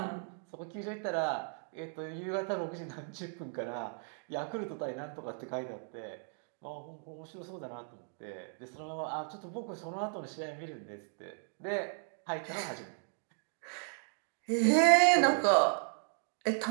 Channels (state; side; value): silent; left; 54 dB below the other